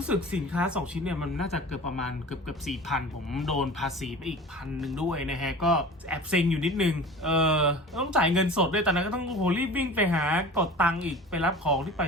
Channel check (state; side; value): normal; both; correlation 0.38